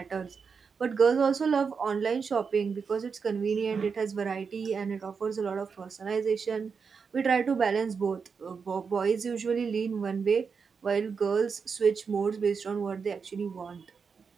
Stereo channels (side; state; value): left; quieter; 5.7 dB